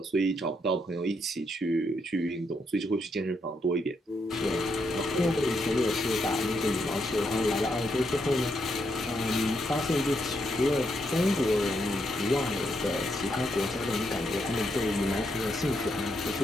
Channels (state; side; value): normal; both; correlation 0.79